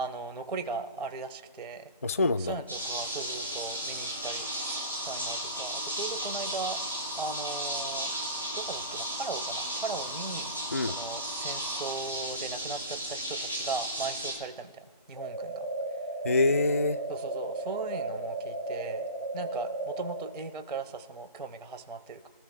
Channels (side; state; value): both; inverted; correlation -0.32